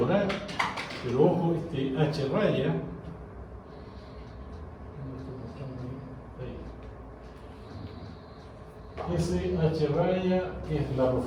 A, pero ojo, este H raya, ese H raya es la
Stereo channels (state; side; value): identical; both; correlation 1.00